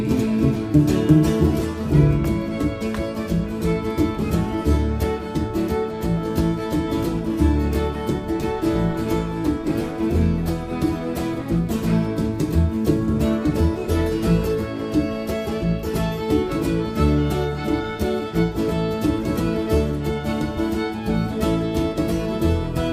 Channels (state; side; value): identical; both; correlation 1.00